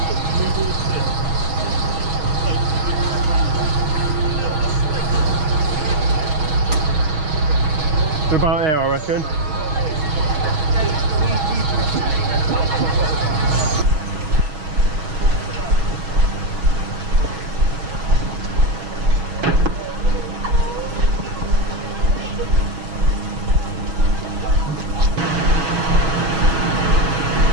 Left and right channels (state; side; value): late; left; 6.4 ms